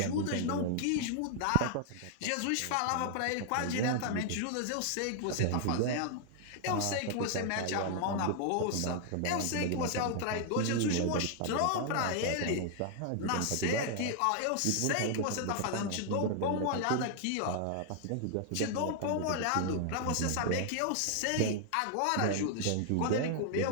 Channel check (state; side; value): different; both; correlation 0.00